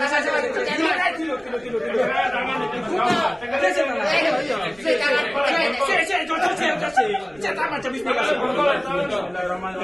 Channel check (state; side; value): noise; right; rumble, 26 dB below the sound